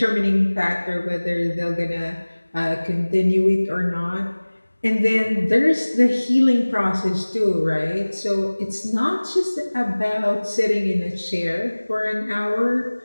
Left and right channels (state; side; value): inverted; both; correlation -1.00